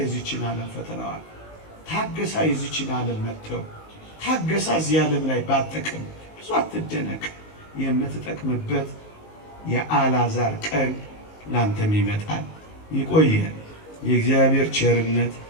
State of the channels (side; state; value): right; late; 19 ms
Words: ዓለም ፈተናዋል፣ ታገሳ የዚችን ዓለም መጥተው ታገሳ እዚህ ዓለም ላይ ባጠቅም ብዙ አትደነቅ። የምትጠቅምበት የአልዓዛር ቀን ላንተም ይመጣል። ይቆየን። የእግዚአብሔር ቸርነት፣